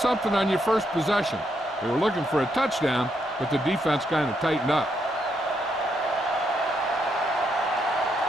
on your first possession. They were looking for a touchdown, but the defense kind of tightened up.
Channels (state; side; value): normal; both; correlation 0.78